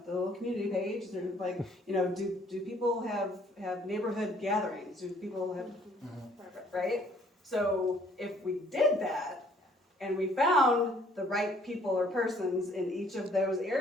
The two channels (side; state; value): both; normal; correlation 0.60